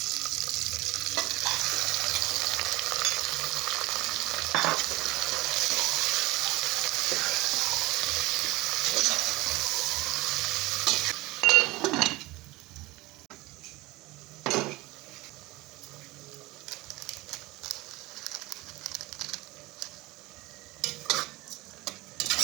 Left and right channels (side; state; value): left; quieter; 20.7 dB